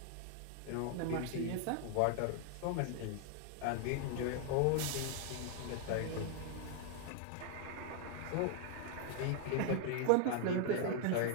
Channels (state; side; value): different; both; correlation 0.00